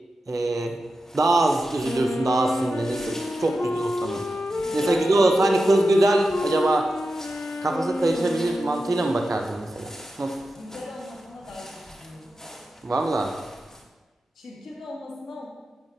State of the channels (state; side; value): normal; both; correlation 0.91